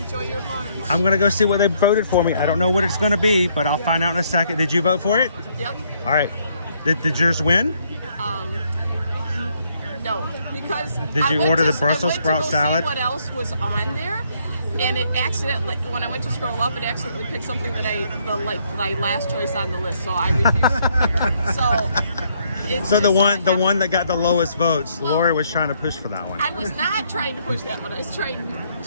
your lunch. I'm going to go see what they voted for me. I don't know what it's going to be, but I'll find out in a second. Did you vote for it? Yep. All right. Did yours win? No, because Did you order the Brussels sprout salad? See what else was on there? And it accidentally, when I went to scroll up, it accidentally picked something that my last choice on the list, so I refused. So the one that got the lowest votes, Lori was trying to push for that one. I was not trying to push that one. I was trying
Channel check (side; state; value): both; inverted; correlation -0.70